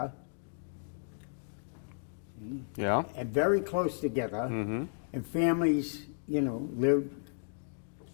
See? Yeah. And very close together. And families, lived.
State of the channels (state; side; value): silent; right; digital silence